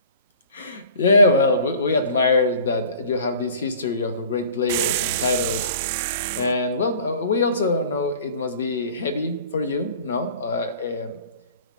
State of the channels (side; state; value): both; inverted; correlation -0.46